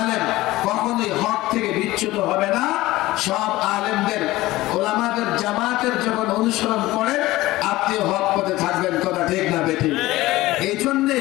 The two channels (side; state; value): right; quieter; 18.0 dB